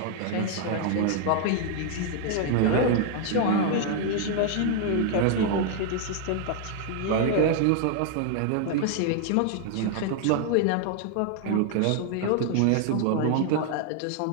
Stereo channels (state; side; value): different; both; correlation 0.00